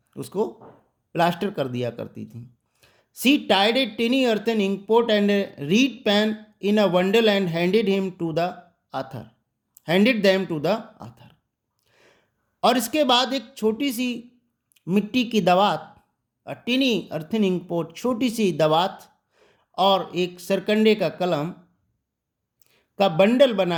उसको प्लास्टर कर दिया करती थी। She tied a tiny earthen ink pot and a reed pen in a bundle and handed them to the author. और इसके बाद एक छोटी सी मिट्टी की दवात, टिनी अर्थन इंक पोट, छोटी सी दवात और एक सरकंडे का कलम का बंडल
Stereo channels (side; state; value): both; identical; correlation 1.00